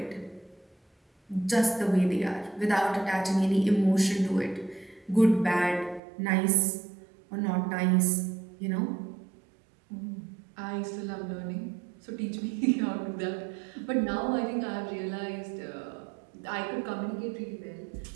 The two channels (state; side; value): drops out; left; at 6.0 s